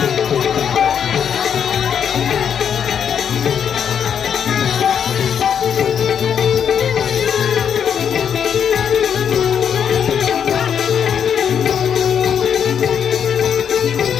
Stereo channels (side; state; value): right; quieter; 8.0 dB